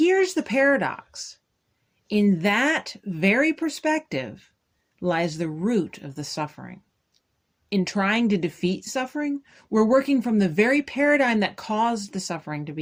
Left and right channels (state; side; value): identical; both; correlation 1.00